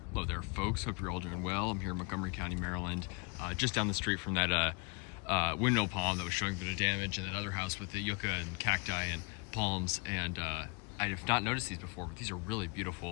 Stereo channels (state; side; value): quieter; right; 30.5 dB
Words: Hello there, folks. Hope you're all doing well. I'm here in Montgomery County, Maryland, just down the street from that windmill palm that was showing a bit of damage, and that other house with the yucca and cacti and palms. And I have not noticed these before, but these are really